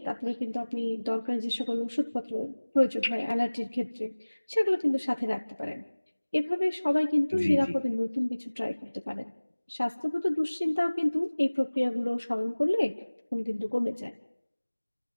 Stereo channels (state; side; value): inverted; both; correlation -1.00